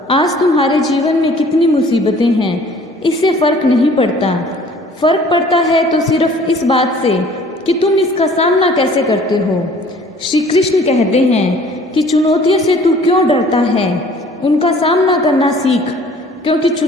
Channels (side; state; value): both; normal; correlation 0.52